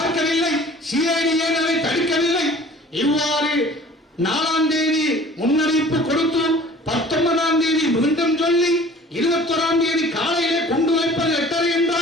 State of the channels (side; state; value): both; normal; correlation 0.48